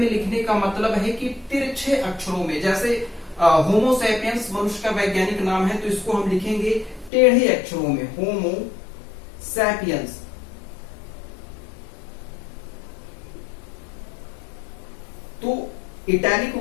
लिखने का मतलब है कि तिरछे अक्षरों में, जैसे होमो सैपियंस मनुष्य का वैज्ञानिक नाम है तो इसको हम लिखेंगे टेढ़े अक्षरों में, होमो सैपियंस। तो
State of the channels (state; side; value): drops out; right; at 7.1 s